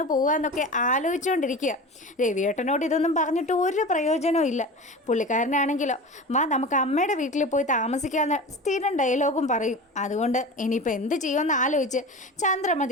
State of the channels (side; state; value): both; normal; correlation 0.32